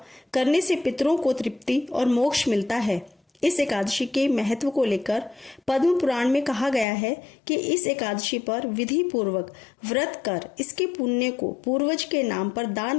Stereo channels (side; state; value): right; drops out; at 6.9 s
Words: करने से पितरों को तृप्ति और मोक्ष मिलता है। इस एकादशी के महत्व को लेकर पद्म पुराण में कहा गया है कि इस एकादशी पर विधि पूर्वक व्रत कर इसके पुण्य को पूर्वज के नाम पर दान